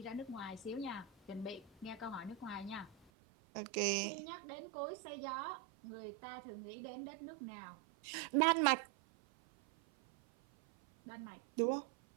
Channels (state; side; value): drops out; left; at 3.1 s